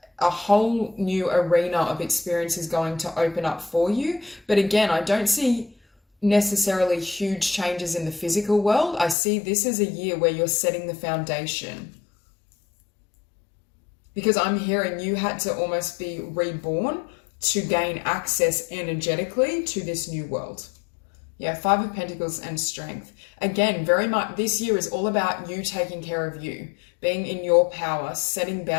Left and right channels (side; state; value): right; drops out; at 9.2 s